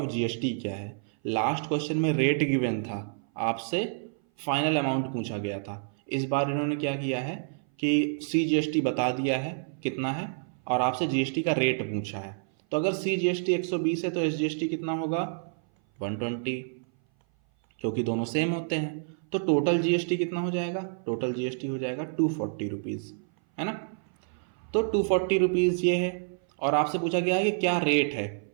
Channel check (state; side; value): silent; left; 57 dB below the other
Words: जीएसटी क्या है। लास्ट क्वेश्चन में रेट गिवन था, आपसे फाइनल अमाउंट पूछा गया था। इस बार इन्होंने क्या किया है कि सी जीएसटी बता दिया है कितना है और आपसे जीएसटी का रेट पूछा है। तो अगर सी जीएसटी 120 है तो एस जीएसटी कितना होगा 120, क्योंकि दोनों सेम होते हैं। तो टोटल जीएसटी कितना हो जाएगा, टोटल जीएसटी हो जाएगा 240 रुपीज़, है ना। तो 240 रुपीज़ ये है, और आपसे पूछा गया है कि क्या रेट है